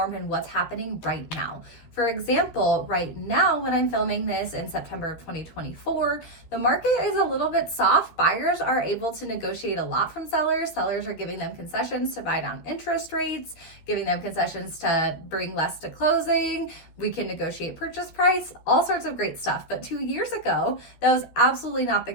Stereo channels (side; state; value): right; late; 13 ms